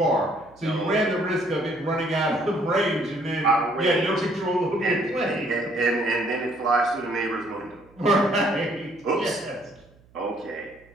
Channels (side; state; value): right; noise; hum, 29 dB below the sound